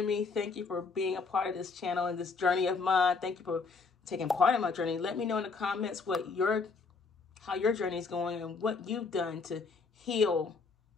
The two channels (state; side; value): quieter; right; 4.5 dB